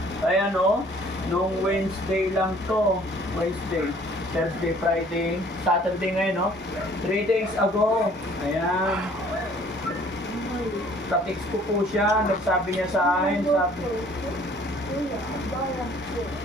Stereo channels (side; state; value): both; normal; correlation 0.56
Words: Kaya nung Wednesday lang to. Wednesday, Thursday, Friday, Saturday ngayon, 3 days ago. Ayan. Sa-text ko po siya, nagsabi niya sa akin,